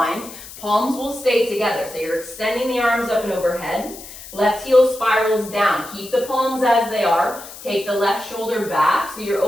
Palms will stay together. So you're extending the arms up and overhead. Left heel spirals down. Keep the palms as they are. Take the left shoulder back. So you're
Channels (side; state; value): left; noise; hiss, 15 dB below the sound